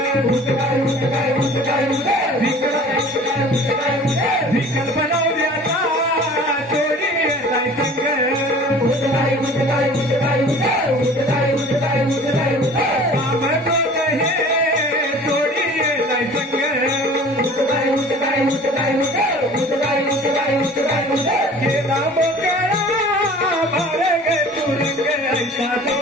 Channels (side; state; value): both; normal; correlation 0.45